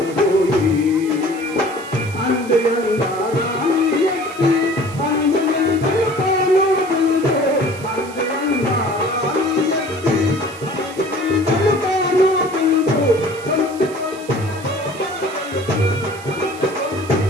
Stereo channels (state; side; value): noise; right; hiss, 18 dB below the sound